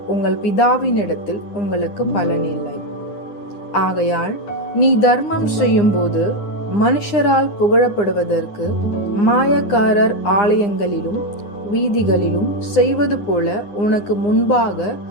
உங்கள் பிதாவினிடத்தில் உங்களுக்கு பலன் இல்லை. ஆகையால் நீ தர்மம் செய்யும் போது மனுஷரால் புகழப்படுவதற்கு மாயக்காரர் ஆலயங்களிலும் வீதிகளிலும் செய்வது போல உனக்கு முன்பாக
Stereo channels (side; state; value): right; late; 9.8 ms